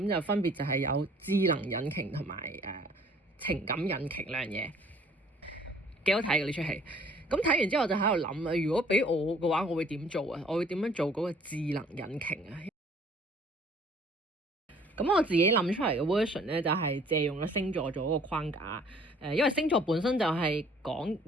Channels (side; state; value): both; normal; correlation 0.56